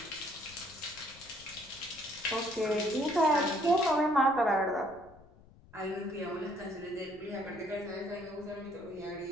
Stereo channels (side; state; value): left; noise; rumble, 23 dB below the sound